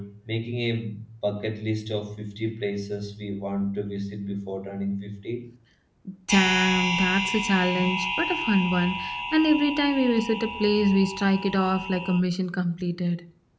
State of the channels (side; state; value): both; identical; correlation 1.00